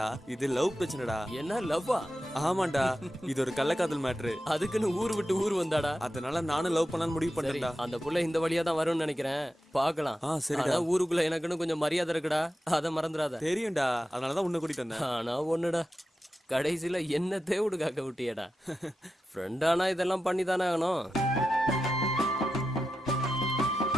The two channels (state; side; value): normal; both; correlation 0.90